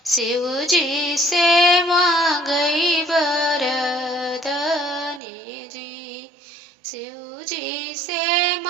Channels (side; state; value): left; drops out; at 5.2 s